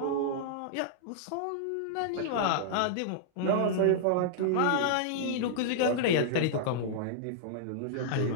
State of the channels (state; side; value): different; both; correlation -0.02